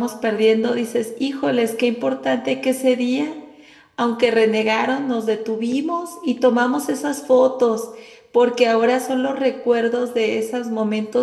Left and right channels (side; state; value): both; identical; correlation 1.00